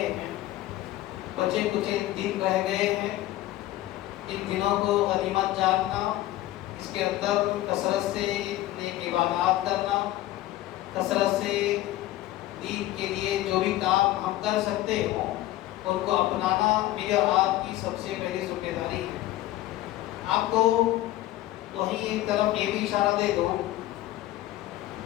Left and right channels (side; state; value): right; quieter; 15.5 dB